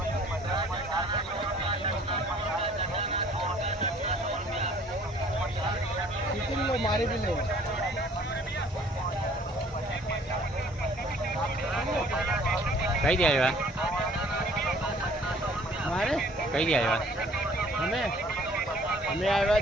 શીખી લો મારી બી લો કઈ દે આવ્યા? મારે કઈ દે આવ્યા? અમે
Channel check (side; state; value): both; normal; correlation 0.56